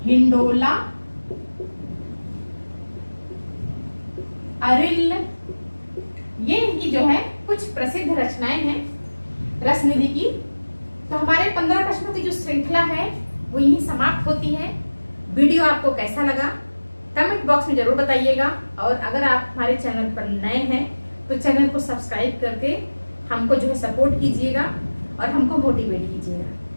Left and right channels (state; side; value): inverted; both; correlation -1.00